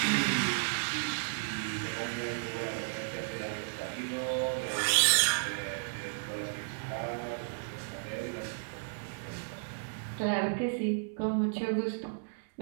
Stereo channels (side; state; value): left; silent; digital silence